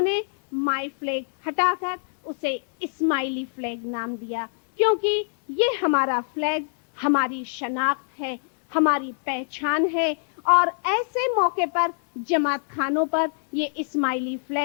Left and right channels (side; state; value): right; silent; digital silence